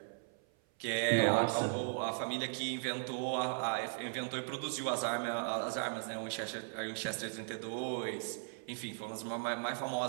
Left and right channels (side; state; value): left; silent; 53 dB below the other